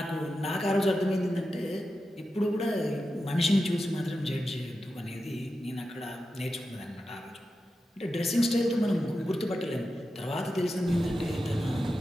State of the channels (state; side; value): normal; both; correlation 0.91